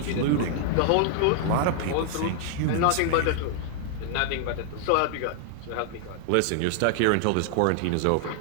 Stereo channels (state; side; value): different; both; correlation -0.01